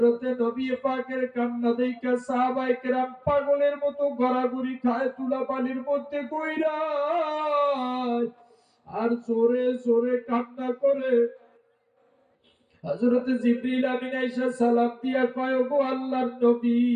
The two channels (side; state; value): both; identical; correlation 1.00